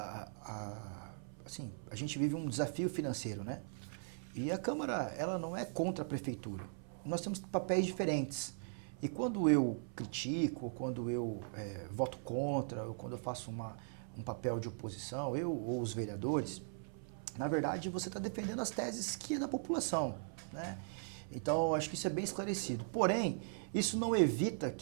Assim, a gente vive um desafio financeiro, né? E a Câmara, ela não é contra a Prefeitura. Nós temos papéis diferentes. E quando eu critico, ou quando eu voto contra, ou quando eu faço um papel de oposição, eu ou os vereadores, na verdade, você está defendendo as teses que é da população, né? Então, acho que isso é bem esclarecido. Porém, isso não evita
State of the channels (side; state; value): left; silent; 52 dB below the other